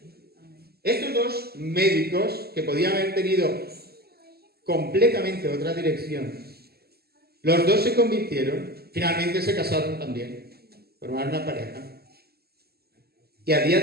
Estos dos médicos, que podían haber tenido completamente otra dirección, los dos se convirtieron, finalmente se casaron también, formaron una pareja, y a día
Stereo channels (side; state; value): left; late; 0.46 ms